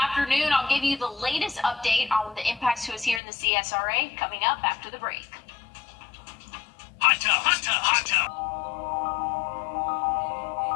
afternoon. I'll give you the latest update on the impacts to us here in the CSRA coming up after the break. Hot tub, hot tub, hot tub.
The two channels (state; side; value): drops out; right; at 3.2 s